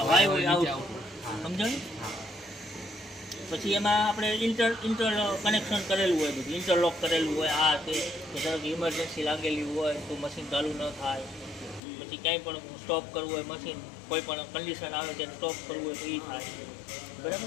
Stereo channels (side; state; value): right; drops out; at 11.8 s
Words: સમજાય. પછી એમાં આપણે ઇન્ટર કનેક્શન કરેલું હોય, બધું ઇન્ટરલોક કરેલું હોય. આ તે ધારો કે ઇમરજન્સી લાગેલી હોય તો મશીન ચાલુ ન થાય. પછી ક્યાંય પણ સ્ટોપ કરવું હોય મશીન, કોઈ પણ કન્ડિશન આવે ત્યારે સ્ટોપ કરવું હોય તો એ થાય